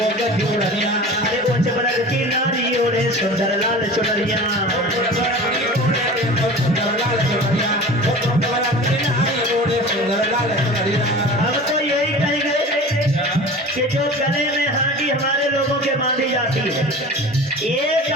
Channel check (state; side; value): normal; both; correlation 0.37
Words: गजोड़निया। अरे उच्च वर्ग की नारी ओढ़े सुंदर लाल चुनरिया, हम तो यही कहेंगे कि जो गले में हांडी हमारे लोगों के बांधी जाती है, ये